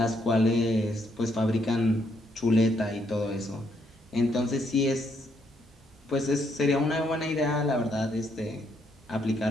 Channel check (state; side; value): normal; both; correlation 0.74